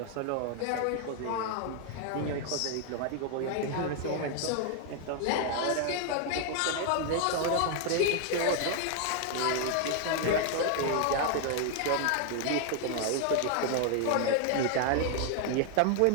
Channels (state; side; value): different; both; correlation 0.00